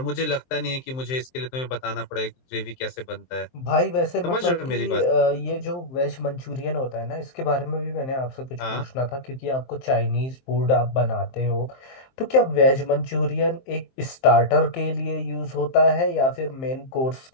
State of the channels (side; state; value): right; late; 23 ms